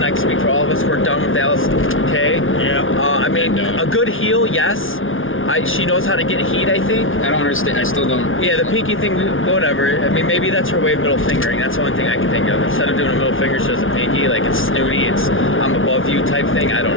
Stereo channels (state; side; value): late; right; 0.58 ms